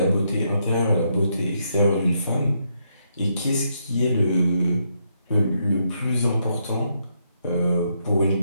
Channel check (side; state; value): both; inverted; correlation -0.77